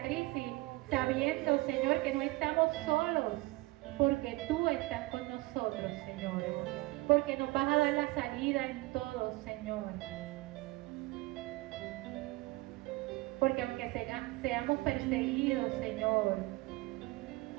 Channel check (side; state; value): left; quieter; 21.6 dB